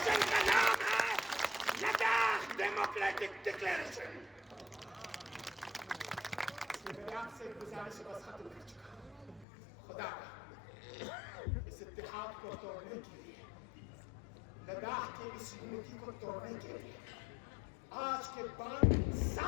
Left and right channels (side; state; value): right; drops out; at 9.5 s